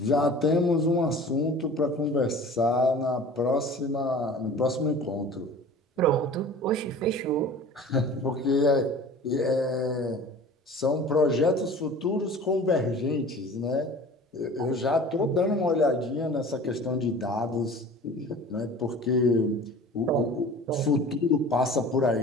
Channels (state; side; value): normal; both; correlation 0.42